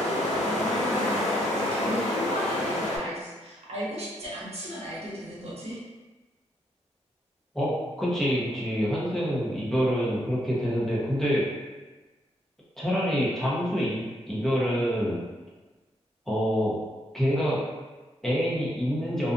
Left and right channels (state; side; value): normal; both; correlation 0.75